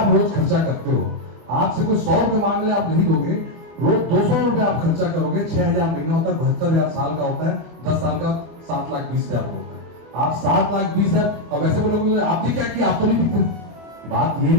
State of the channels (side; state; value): left; late; 24 ms